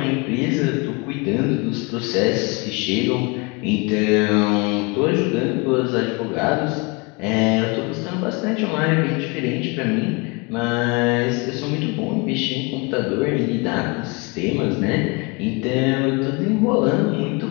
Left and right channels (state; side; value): quieter; right; 28.4 dB